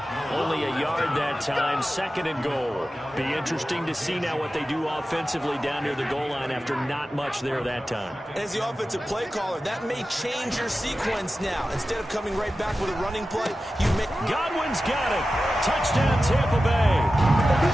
Only a yard that time, 2nd and goal. Be interesting to see now what they do offensively down near the goal line after not much there that time. As the offensive play caller, that may change your sequence now. Instead of coming right back with a running play, you may... Godwin's got it. Touchdown, Tampa Bay.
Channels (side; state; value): both; normal; correlation 0.94